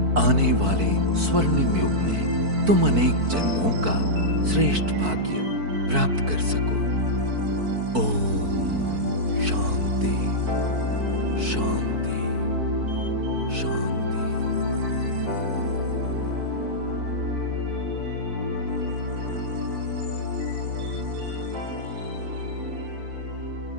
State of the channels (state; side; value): late; left; 4.5 ms